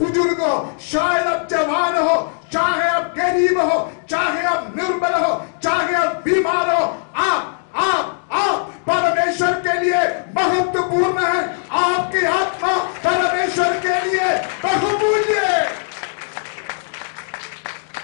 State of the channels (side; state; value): right; silent; digital silence